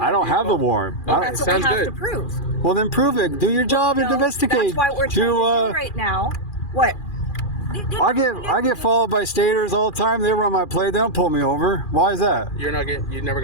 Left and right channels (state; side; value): late; right; 2.4 ms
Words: have the vehicle. warrant. Okay, That's what sounds we have good. to prove. Well, then prove it. Do your job and No, investigate. That's why we're trying to do right now. What? I get followed by staters all the time. They run my plate. They don't pull me over. Why is that? You never